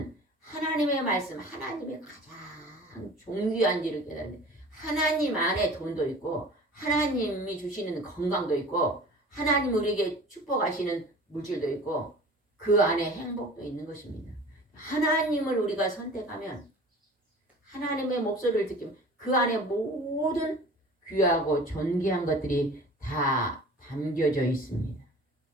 하나님의 말씀, 하나님의 가장 존귀한지를 깨달는데 하나님 안에 돈도 있고 하나님이 주시는 건강도 있고 하나님 우리에게 축복하시는 물질도 있고 그 안에 행복도 있는 것입니다. 하나님을 우리가 선택하면 하나님의 목소리를 듣기면 그 안에 모든 귀하고 존귀한 것들이 다 담겨져 있습니다.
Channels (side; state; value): both; normal; correlation 0.42